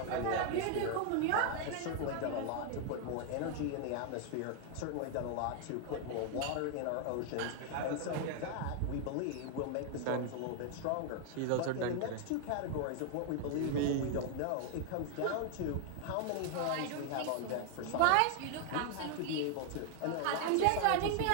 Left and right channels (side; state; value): both; different; correlation 0.00